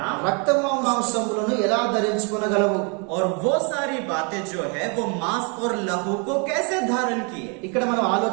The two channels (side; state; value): left; quieter; 35.8 dB